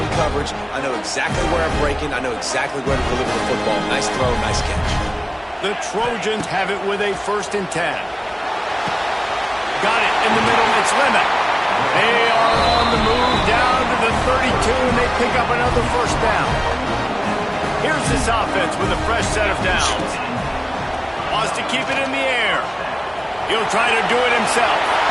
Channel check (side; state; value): both; identical; correlation 1.00